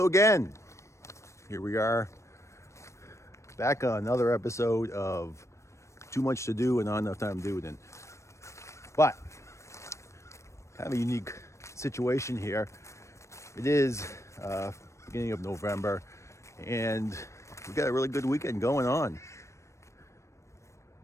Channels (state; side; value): late; right; 0.14 ms